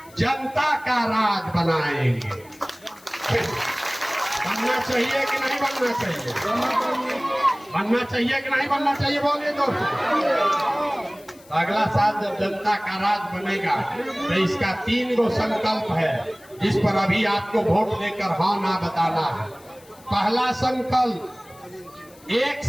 जनता का राज बनाएंगे। बनना चाहिए कि नहीं बनना चाहिए? बनना चाहिए कि नहीं बनना चाहिए? बोलिए दोस्तों। तो अगला साल जब जनता का राज बनेगा तो इसका 3 गो संकल्प है, जिस पर अभी आपको वोट देकर हाँ ना बताना है। पहला संकल्प, 1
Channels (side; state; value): left; noise; hiss, 25 dB below the sound